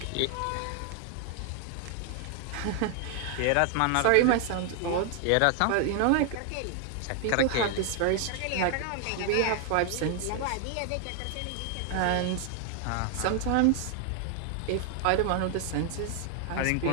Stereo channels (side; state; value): both; different; correlation 0.00